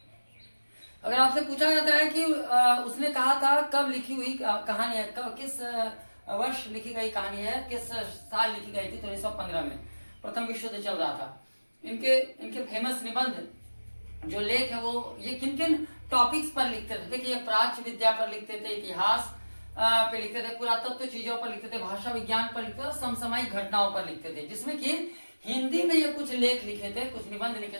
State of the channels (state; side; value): inverted; both; correlation -1.00